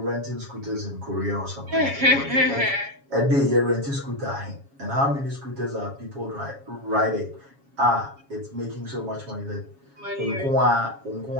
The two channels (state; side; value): late; left; 7.2 ms